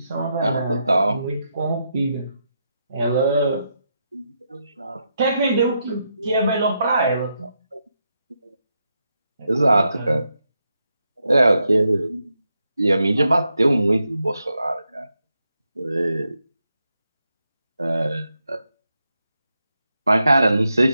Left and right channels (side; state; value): both; inverted; correlation -0.83